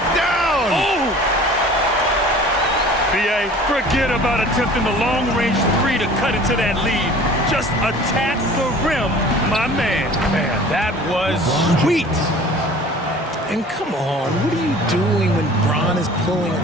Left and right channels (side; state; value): both; normal; correlation 0.46